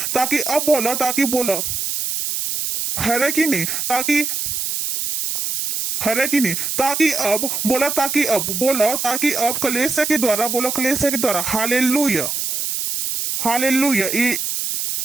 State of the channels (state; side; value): noise; right; hiss, 2 dB below the sound